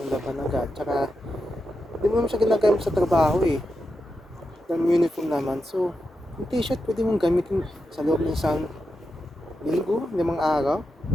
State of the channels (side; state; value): both; normal; correlation 0.87